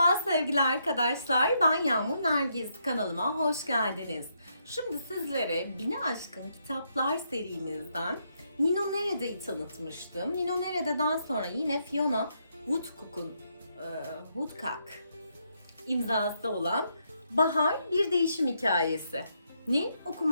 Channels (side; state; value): both; inverted; correlation -0.77